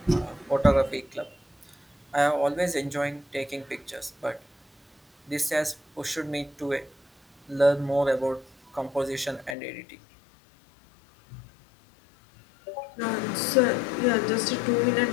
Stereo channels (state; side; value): drops out; right; at 9.6 s